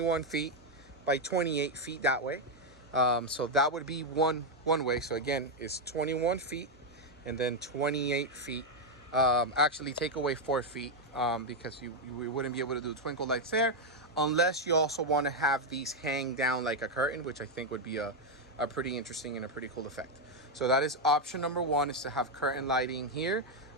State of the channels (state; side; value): normal; both; correlation 0.03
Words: feet by 28 feet that way. So that would be one way. So again, it's 21 feet and then 28 feet. Actually take away 4 feet because we wouldn't be able to do twinkle lights there unless you also want to have these hang down like a curtain, which I think would be a pretty interesting and a pretty cool effect. So that is option number one, is to have curtain lighting here.